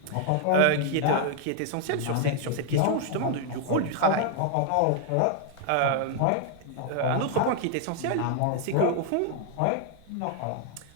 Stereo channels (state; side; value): different; both; correlation 0.00